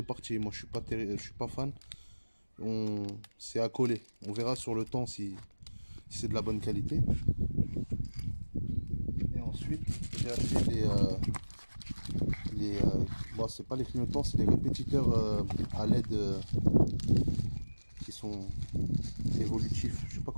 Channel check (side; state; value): both; inverted; correlation -1.00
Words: parties. Moi, je suis pas fan. C'est à coller. On verra sur le temps si c'est de la bonne qualité. Et ensuite, j'ai acheté bon, c'est pas les clignotants, c'est les répétiteurs à LED qui sont évolutifs. Je sais pas